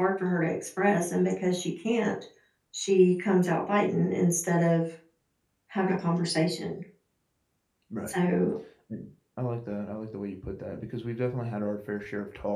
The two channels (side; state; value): both; identical; correlation 1.00